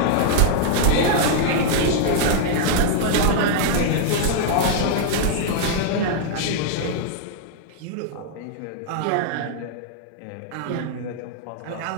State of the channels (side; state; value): both; different; correlation -0.01